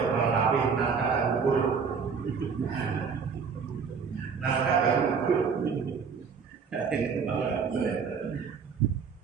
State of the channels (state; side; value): quieter; left; 5.9 dB